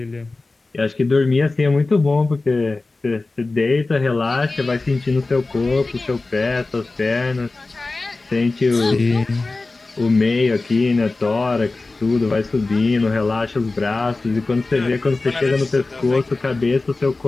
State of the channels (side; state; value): right; quieter; 3.4 dB